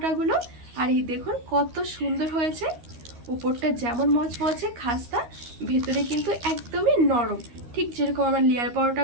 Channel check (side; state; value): left; late; 13 ms